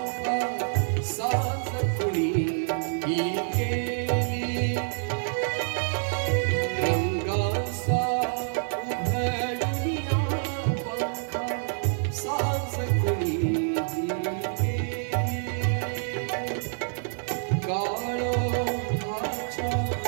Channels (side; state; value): left; silent; digital silence